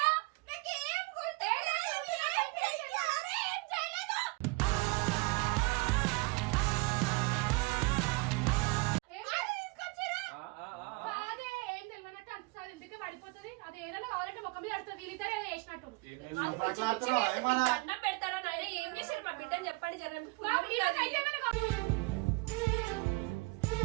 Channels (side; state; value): left; quieter; 26.6 dB